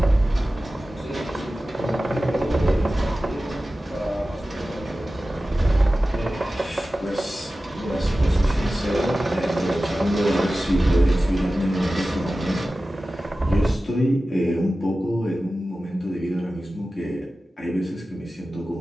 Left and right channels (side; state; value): both; normal; correlation 0.95